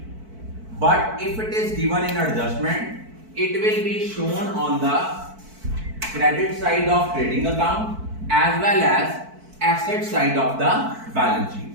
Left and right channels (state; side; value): late; left; 4.5 ms